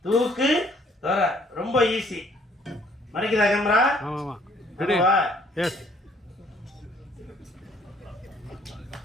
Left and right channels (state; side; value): normal; both; correlation 0.62